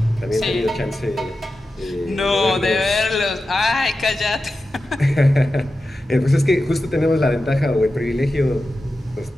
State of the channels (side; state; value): both; normal; correlation 0.92